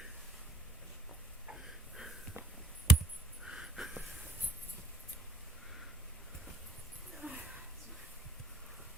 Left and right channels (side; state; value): both; normal; correlation 0.66